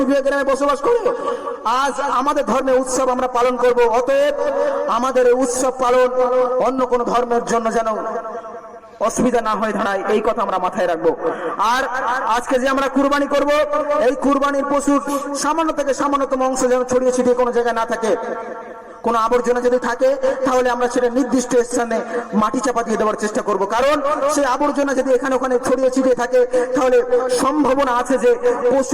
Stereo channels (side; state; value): both; identical; correlation 1.00